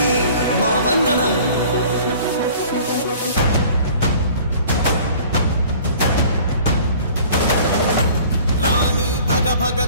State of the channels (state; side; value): inverted; both; correlation -0.48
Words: మా వందనం. భగ